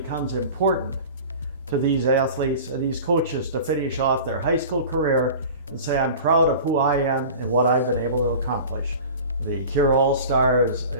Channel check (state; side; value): inverted; both; correlation -0.38